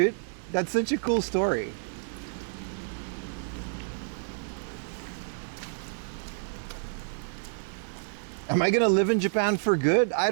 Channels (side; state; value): left; silent; digital silence